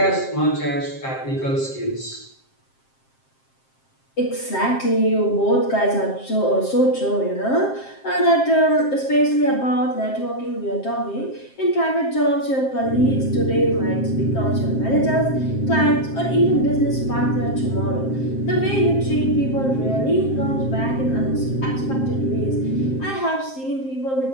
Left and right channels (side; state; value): right; late; 7.6 ms